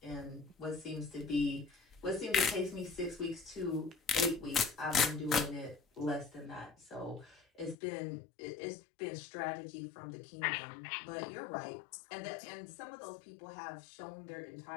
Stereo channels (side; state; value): right; drops out; at 7.8 s